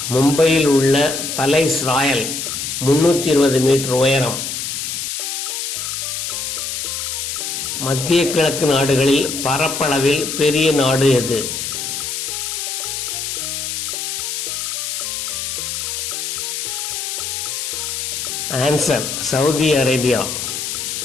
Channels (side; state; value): left; noise; hiss, 3 dB below the sound